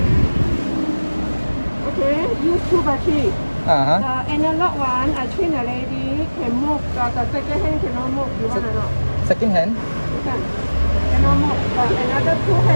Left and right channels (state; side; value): inverted; both; correlation -1.00